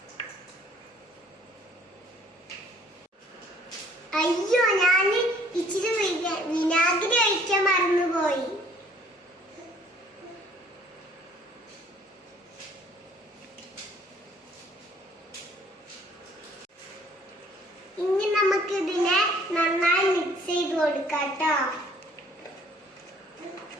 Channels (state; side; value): normal; both; correlation 0.59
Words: അയ്യോ, ഞാൻ ഇച്ചിരി വിനാഗിരി ഒഴിക്കാൻ മറന്നുപോയി. ഇനി നമുക്ക് ഇതിനെ നന്നായി മിക്സ് ചെയ്ത് കൊടുക്കാം ട്ടോ.